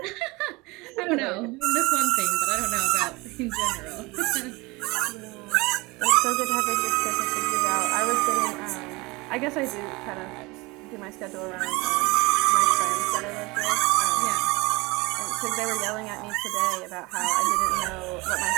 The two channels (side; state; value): left; quieter; 24.1 dB